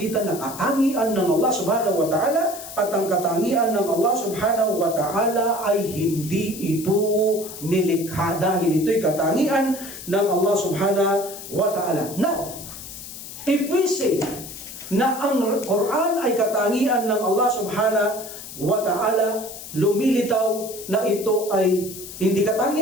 ng katangian ng Allah subhanahu wa ta'ala, at ang katangian ng Allah subhanahu wa ta'ala ay hindi ito nilikha, dahil ito'y katangian ng Allah subhanahu wa ta'ala. Now, if we say na ang Quran ay katangian ng Allah subhanahu wa ta'ala, lumilitaw na ito ay hindi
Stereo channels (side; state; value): left; noise; hiss, 12 dB below the sound